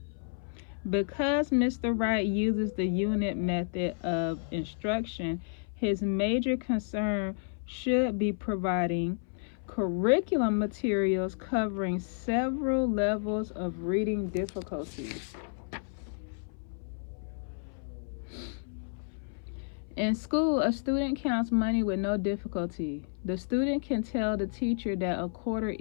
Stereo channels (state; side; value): silent; right; 57 dB below the other